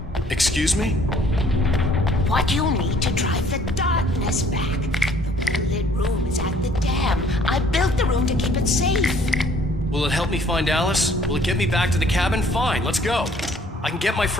Excuse me? What you need to drive the darkness back. The well-lit room is at the dam. I built the room to keep it safe. Will it help me find Alice? Will it get me back to the cabin? Fine, let's go. I can get my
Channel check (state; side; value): normal; both; correlation 0.59